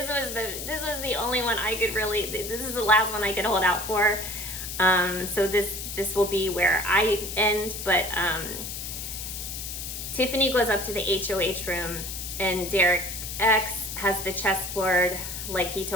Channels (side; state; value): left; noise; hiss, 7 dB below the sound